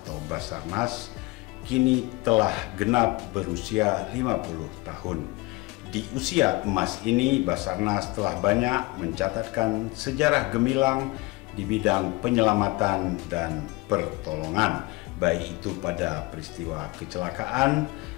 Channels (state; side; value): quieter; right; 23.5 dB